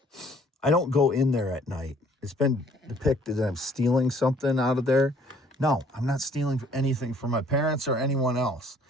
I don't go in there at night. It's been depicted that I'm stealing something out of there. No, I'm not stealing anything from my parents or anyone else.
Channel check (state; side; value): normal; both; correlation 0.59